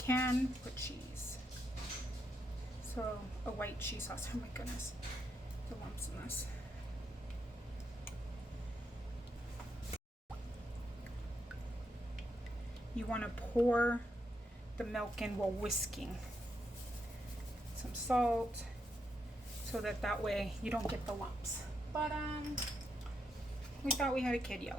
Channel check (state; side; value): normal; both; correlation 0.80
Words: put cheese. So a white cheese sauce. Oh my goodness, the lumps in this. You want to pour the milk in while whisking. Some salt, so that way you don't get the lumps. But we thought we had a kid